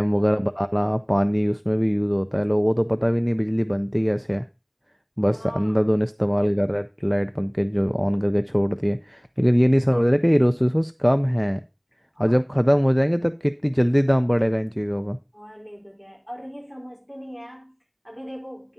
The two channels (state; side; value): identical; both; correlation 1.00